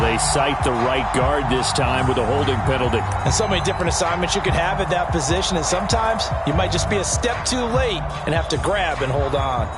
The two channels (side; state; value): both; identical; correlation 1.00